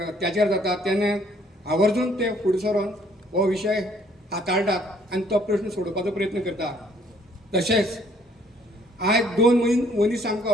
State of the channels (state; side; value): normal; both; correlation 0.62